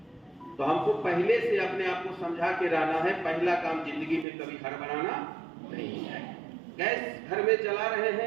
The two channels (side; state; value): left; drops out; at 4.2 s